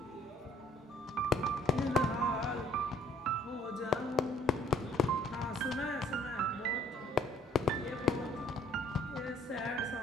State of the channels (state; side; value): normal; both; correlation 0.57